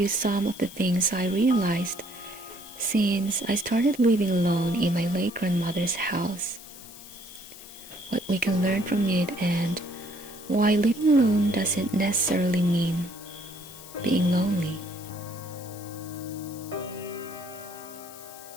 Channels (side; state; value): left; noise; hiss, 17 dB below the sound